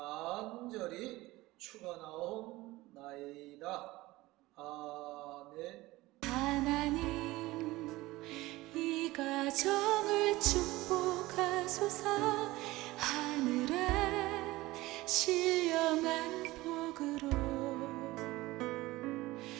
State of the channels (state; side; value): quieter; left; 19.1 dB